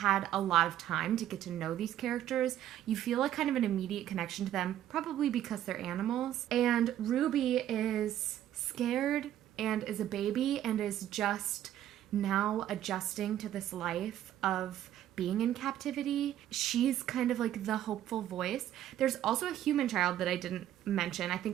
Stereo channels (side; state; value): left; quieter; 11.9 dB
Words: a lot of time to get to know these characters, you feel like kind of an immediate connection to them, probably because they're animals. And Ruby is scared and is a baby and is just now adjusting to this life of being in captivity. She's kind of like the hopeful voice. There's also a human child that I didn't mention. I